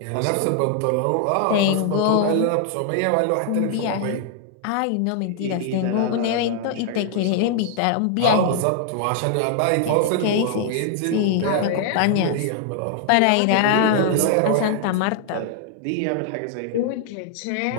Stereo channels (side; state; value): both; different; correlation -0.01